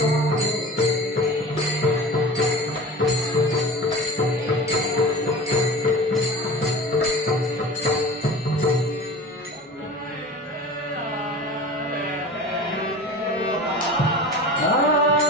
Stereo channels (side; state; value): both; normal; correlation 0.36